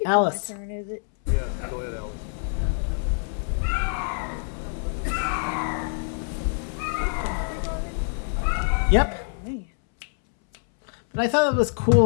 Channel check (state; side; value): silent; right; 61 dB below the other